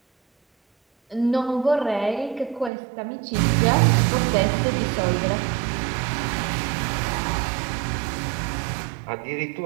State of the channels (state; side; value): drops out; left; at 2.7 s